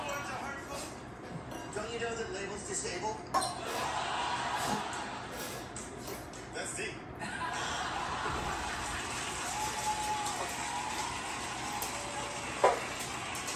words are hurtful? Don't you know that labels disable? That's deep.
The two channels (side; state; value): both; identical; correlation 1.00